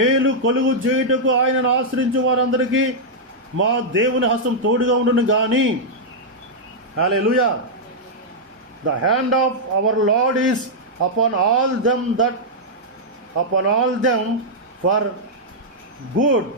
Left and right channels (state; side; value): normal; both; correlation -0.07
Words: కొలుగు చేయుటకు ఆయనను ఆశ్రయించు వారందరికీ మా దేవుని హస్తం తోడుగా ఉండును గాని. హల్లెలూయా. The hand of our Lord is upon all them for good